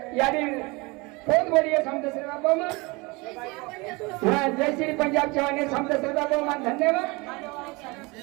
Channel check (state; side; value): quieter; left; 25.8 dB